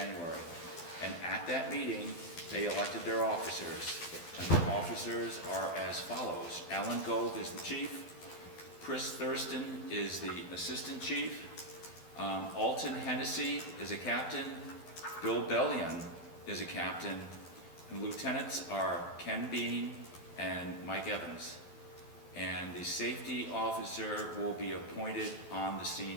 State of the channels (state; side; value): late; right; 12 ms